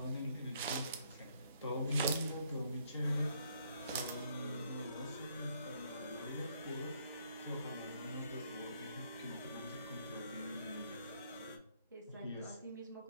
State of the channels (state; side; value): inverted; both; correlation -0.69